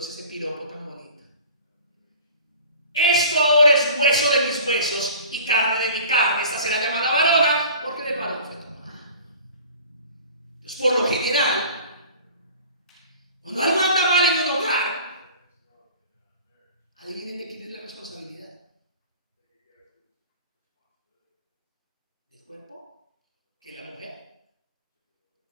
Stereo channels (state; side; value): inverted; both; correlation -0.43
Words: ese piropo tan bonito. Esto ahora es hueso de mis huesos y carne de mi carne. Esta será llamada varona porque del varón fue tomada. Entonces, por lo general, cuando algo anda mal en un hogar, adivinen de quién es la responsabilidad. ¿Del cuerpo? ¿Que la mujer?